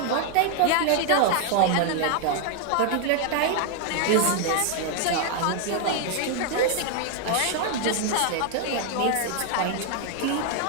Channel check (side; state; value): both; different; correlation 0.00